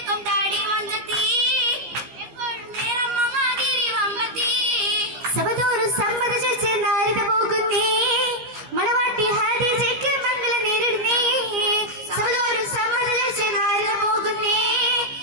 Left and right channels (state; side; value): late; left; 15 ms